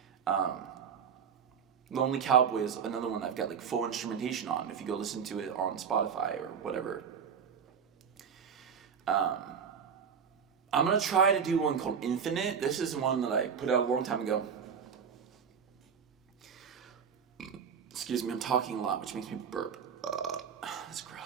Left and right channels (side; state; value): left; quieter; 7.0 dB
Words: Lonely Cowboy is another one I've got full instrumentation on. If you go listen to it on Spotify or whatever. I'm gonna try to do one called Infinite. This is one that I put out a long time ago. Excuse me, I'm talking a lot, which makes me burp. That's